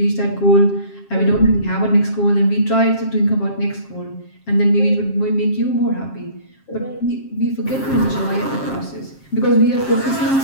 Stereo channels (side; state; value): right; late; 7.4 ms